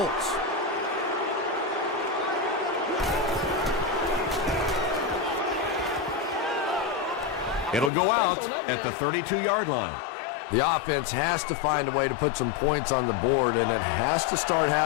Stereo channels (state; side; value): drops out; right; at 7.9 s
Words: It'll go out at the 32-yard line. The offense has to find a way to put some points on the board, and it has to start